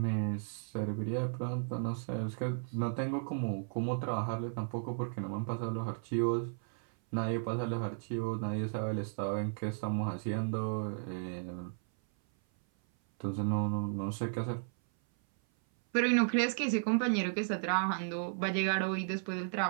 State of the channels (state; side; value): silent; left; 55 dB below the other